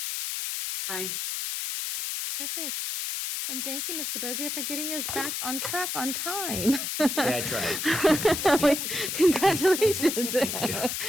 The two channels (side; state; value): left; noise; hiss, 3 dB below the sound